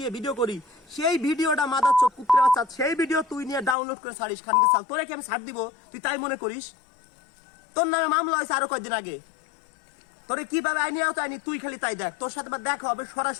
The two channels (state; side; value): drops out; right; at 3.8 s